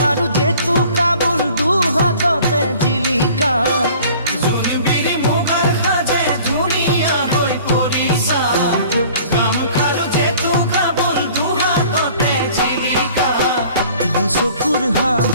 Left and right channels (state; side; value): inverted; both; correlation -0.49